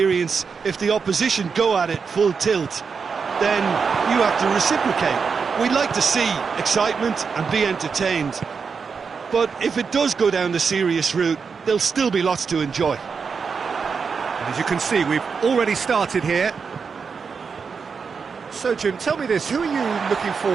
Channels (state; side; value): quieter; left; 5.6 dB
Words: if the opposition go at it full tilt, then you have to reciprocate. We'd like to see excitement and be entertained, but if it does go down the serious route, there'll still be lots to enjoy. And as you can see, we've already started here. So, Jim, tell me this, who are you looking